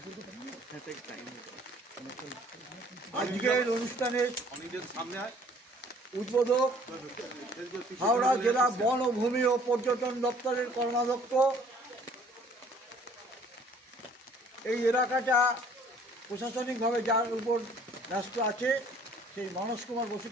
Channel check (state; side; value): normal; both; correlation 0.57